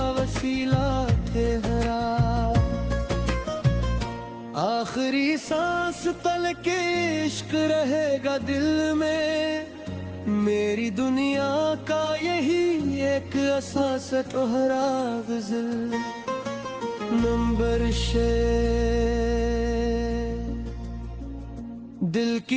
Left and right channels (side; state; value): both; identical; correlation 1.00